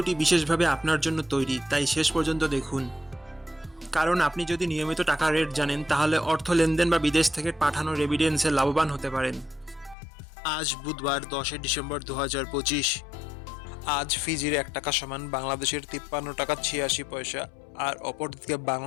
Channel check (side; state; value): right; drops out; at 10.0 s